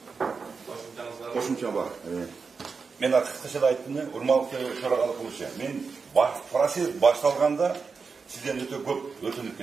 Кошумча бар. Мен кыскача айттым, урматтуу төрагалық кылуучу. Мен процесс башталганда сизден өтө көп өтүнүп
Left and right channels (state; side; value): quieter; left; 5.0 dB